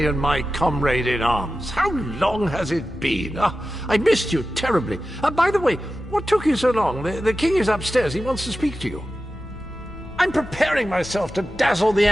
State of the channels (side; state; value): both; normal; correlation 0.93